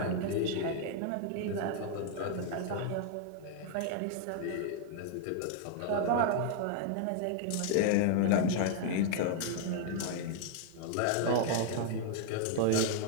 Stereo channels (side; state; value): both; different; correlation 0.00